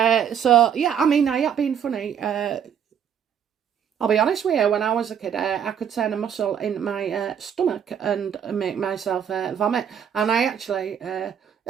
So, yeah, I mean, I have been funny. I'll be honest with you, when I was a kid, I could turn a muscle in my stomach and make myself vomit. And I actually,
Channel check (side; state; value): left; quieter; 8.4 dB